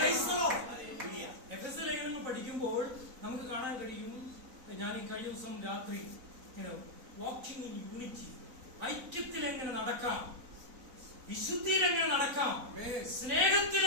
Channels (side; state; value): left; late; 4.0 ms